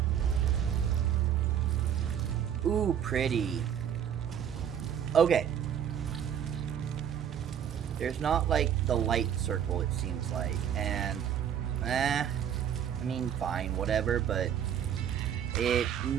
Ooh, pretty. Okay. There's not, like, the light circle, it seems like. And, I mean, fine, whatever, but it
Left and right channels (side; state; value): left; quieter; 9.1 dB